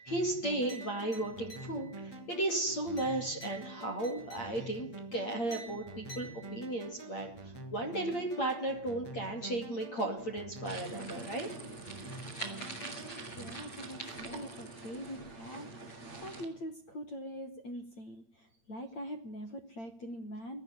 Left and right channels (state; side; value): late; right; 8.8 ms